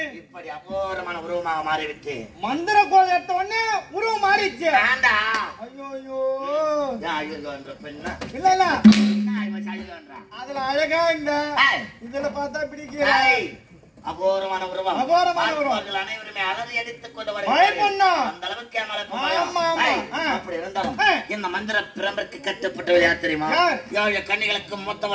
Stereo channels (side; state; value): both; identical; correlation 1.00